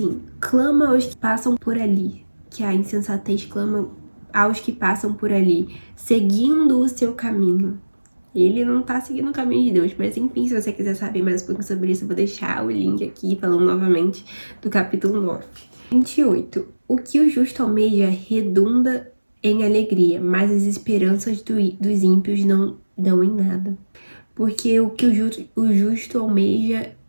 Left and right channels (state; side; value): inverted; both; correlation -1.00